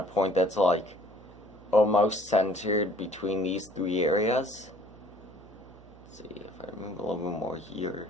point that's like almost centered between these 3 areas. Let's see if I move a little bit more here.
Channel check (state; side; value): noise; right; hum, 22 dB below the sound